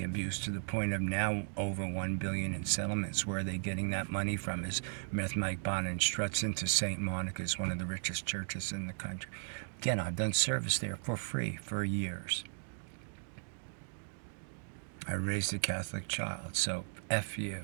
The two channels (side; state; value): left; silent; digital silence